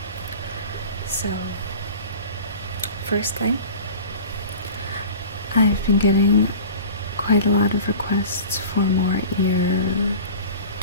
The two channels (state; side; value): inverted; both; correlation -0.38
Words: So, first thing, I've been getting quite a lot of requests for more